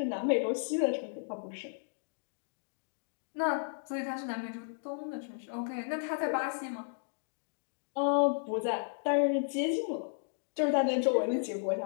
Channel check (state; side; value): silent; right; digital silence